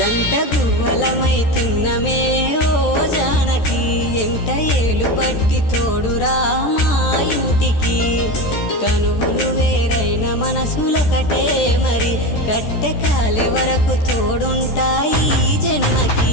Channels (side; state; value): right; late; 14 ms